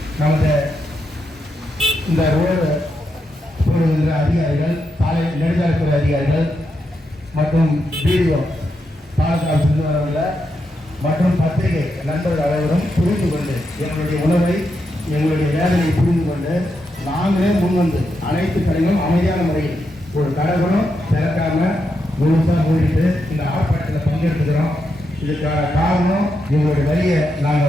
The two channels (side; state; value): both; normal; correlation 0.84